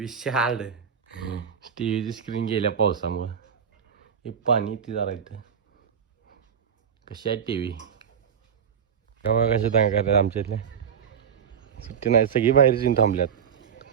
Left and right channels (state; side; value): quieter; left; 7.6 dB